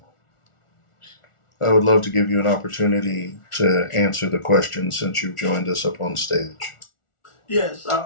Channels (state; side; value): late; right; 1.4 ms